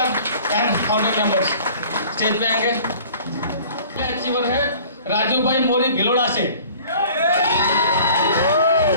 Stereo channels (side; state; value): both; inverted; correlation -0.48